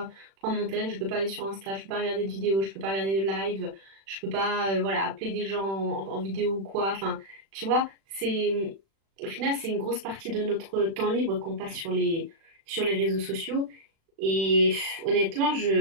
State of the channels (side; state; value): left; late; 36 ms